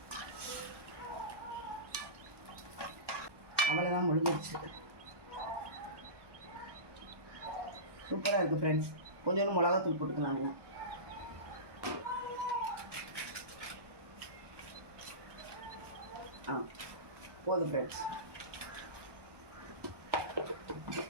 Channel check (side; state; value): left; late; 1.2 ms